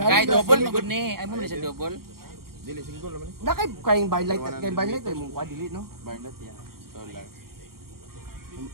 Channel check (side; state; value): left; late; 0.93 ms